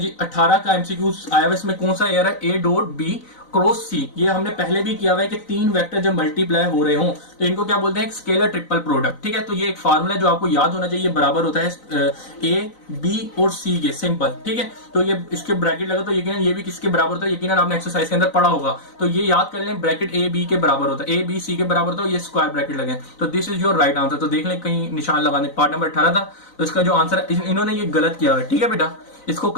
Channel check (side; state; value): right; late; 4.0 ms